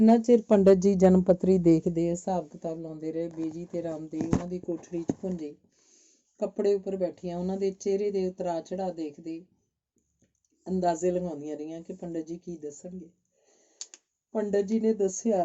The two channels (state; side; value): identical; both; correlation 1.00